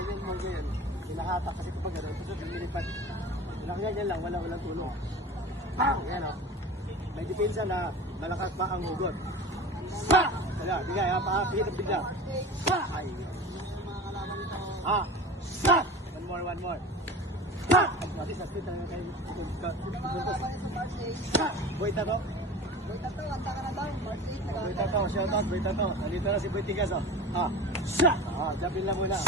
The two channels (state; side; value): normal; both; correlation 0.35